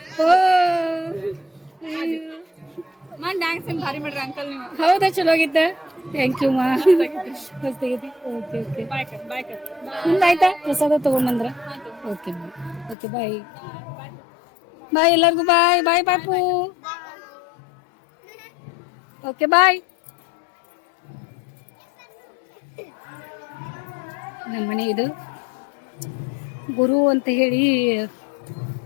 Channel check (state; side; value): drops out; right; at 13.0 s